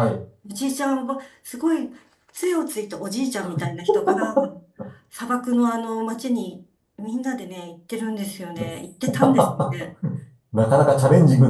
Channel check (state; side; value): identical; both; correlation 1.00